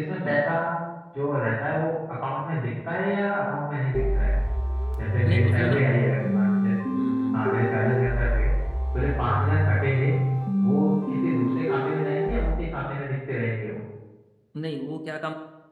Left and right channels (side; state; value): both; identical; correlation 1.00